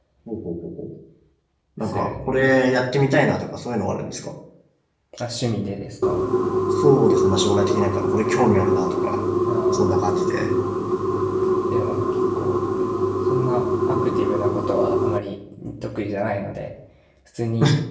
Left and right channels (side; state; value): both; identical; correlation 1.00